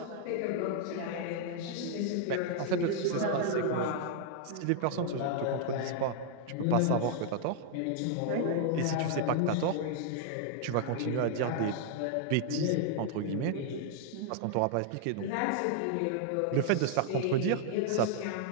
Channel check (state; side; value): different; both; correlation 0.00